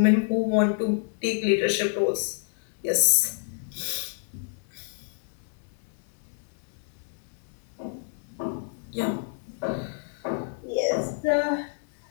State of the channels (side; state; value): right; silent; digital silence